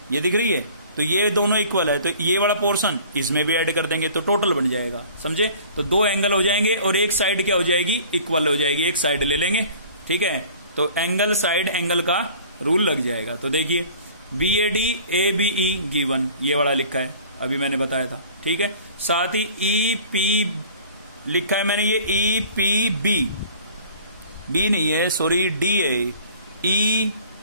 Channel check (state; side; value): inverted; both; correlation -0.48